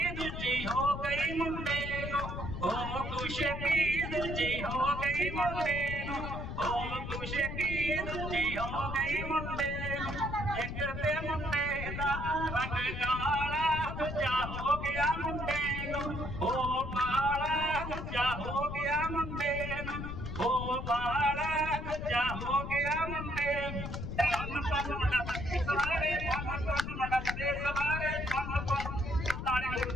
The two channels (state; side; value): noise; left; rumble, 6 dB below the sound